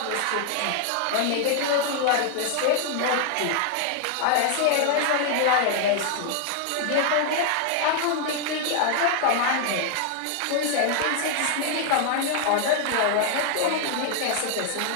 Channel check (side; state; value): both; different; correlation 0.00